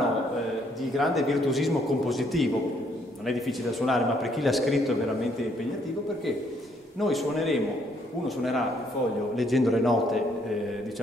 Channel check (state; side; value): normal; both; correlation 0.68